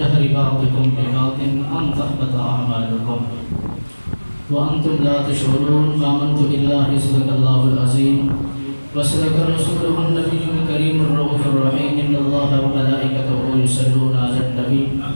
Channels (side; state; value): both; inverted; correlation -1.00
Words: بعضكم ببعض أن تحبط أعمالكم وأنتم لا تشعرون آمنت بالله صدق الله العظيم وصدق رسوله النبي الكريم الرؤوف الرحيم إن الله وملائكته يصلون على النبي